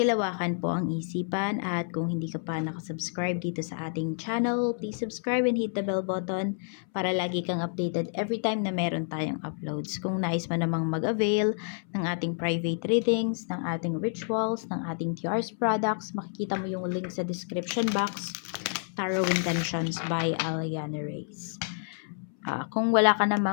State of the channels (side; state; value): right; silent; 59 dB below the other